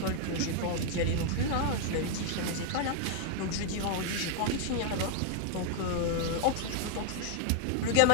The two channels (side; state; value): both; different; correlation 0.00